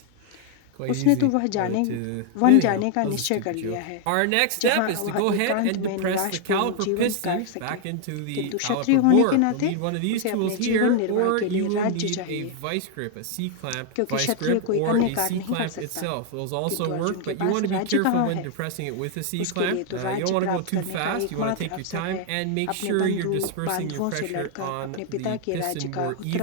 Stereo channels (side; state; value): both; different; correlation 0.00